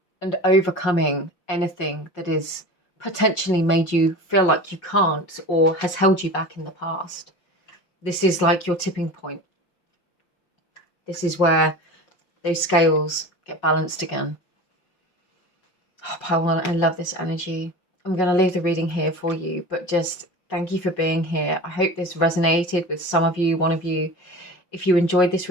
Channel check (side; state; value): right; late; 5.8 ms